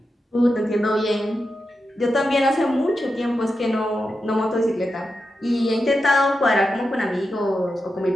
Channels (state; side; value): normal; both; correlation 0.89